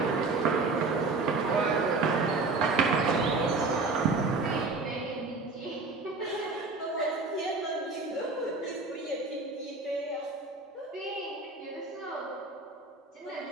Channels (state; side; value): quieter; left; 3.7 dB